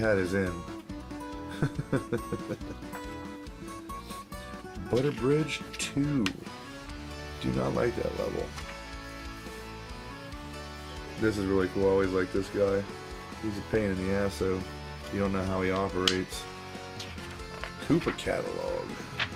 his in. Butter Bridge 2. Do not like that level. This is really cool. I always like this guy. He's a pain in the ass, so you don't know how he operates. Koopa Catalog.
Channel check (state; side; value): identical; both; correlation 1.00